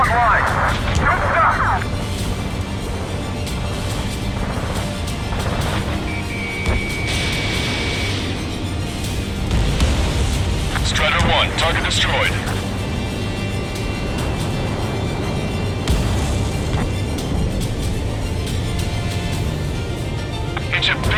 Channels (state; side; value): identical; both; correlation 1.00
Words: line. Good stuff. Strider 1, target destroyed. It's a